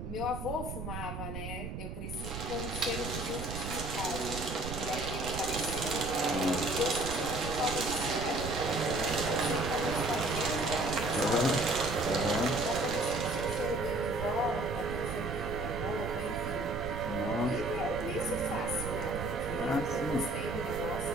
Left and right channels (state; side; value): noise; right; rumble, 6 dB below the sound